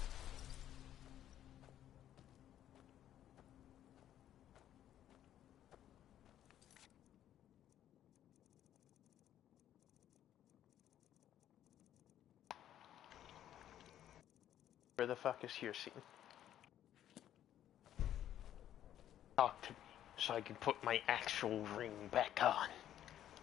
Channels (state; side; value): quieter; right; 11.4 dB